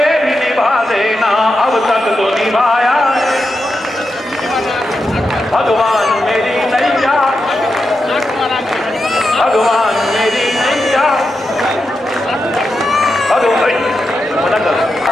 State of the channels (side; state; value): both; normal; correlation 0.88